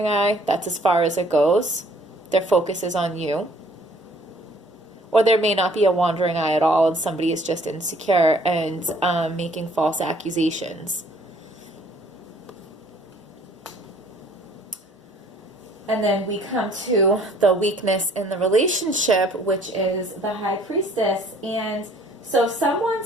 eye, that's as far as it goes. Their focus is on you. Or there may not be a wandering eye at all, and somebody is just insecure and making false accusations. And then we come to the weakness in the relationship, which is the High Priestess. And so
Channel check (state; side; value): normal; both; correlation 0.58